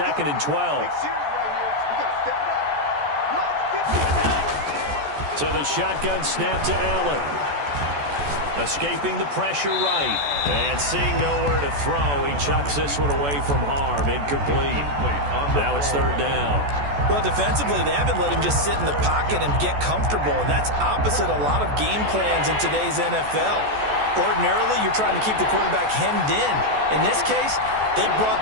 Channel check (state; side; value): late; left; 14 ms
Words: and 12. So the shotgun snap to Allen. Escaping the pressure right. And seeing nowhere to throw, he chucks this one away from harm. Incomplete. Now it's 3rd down. Well, defensively, they haven't let him just sit in the pocket and get comfortable. And that's opposite a lot of game plans in today's NFL. Ordinarily, you're trying to keep the quarterback hemmed in. In this case, they